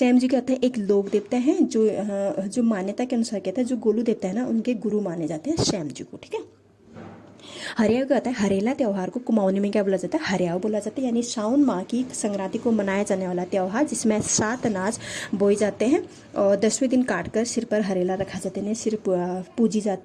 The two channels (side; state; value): both; identical; correlation 1.00